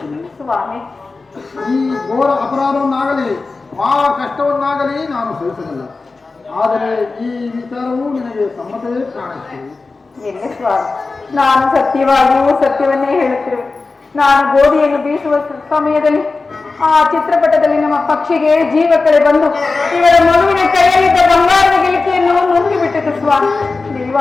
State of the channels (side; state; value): right; quieter; 3.9 dB